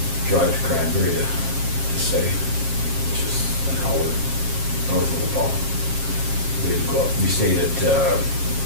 drive to Cranberry to stay, which is an hour north of the fall. We had to go up, we stayed at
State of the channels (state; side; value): late; left; 7.4 ms